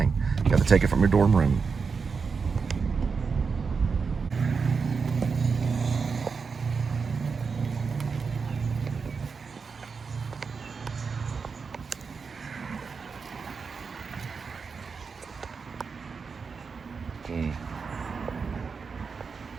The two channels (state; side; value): quieter; left; 5.3 dB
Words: You have to take it from your dorm room.